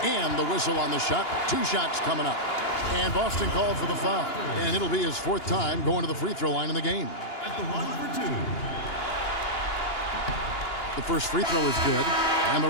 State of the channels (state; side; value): late; right; 2.9 ms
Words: and the whistle on the shot. 2 shots coming up. And Boston called for the foul. And it'll be his 4th time going to the free throw line in the game. At the line for 2. The first free throw is good. And the